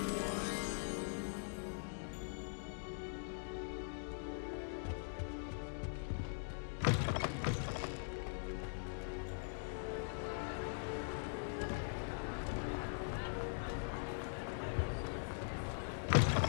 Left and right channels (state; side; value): silent; right; digital silence